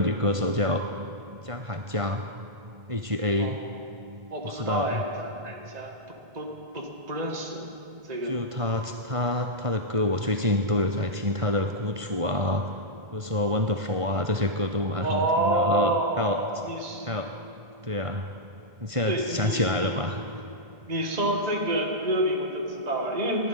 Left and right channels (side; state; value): left; late; 1.5 ms